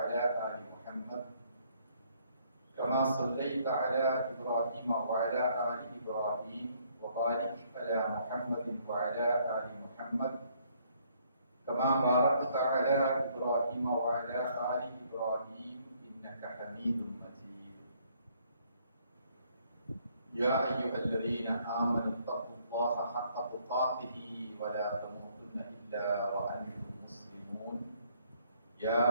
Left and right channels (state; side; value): inverted; both; correlation -0.67